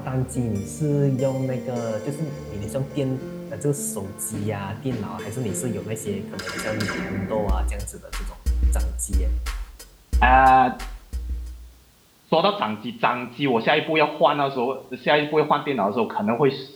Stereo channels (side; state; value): both; identical; correlation 1.00